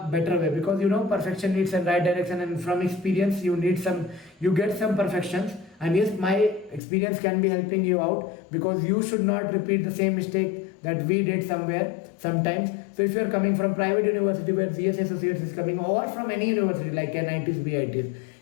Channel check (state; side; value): drops out; right; at 6.8 s